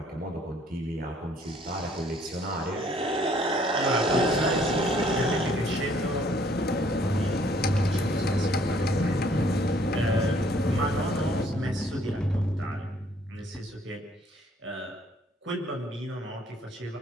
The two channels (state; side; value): normal; both; correlation 0.62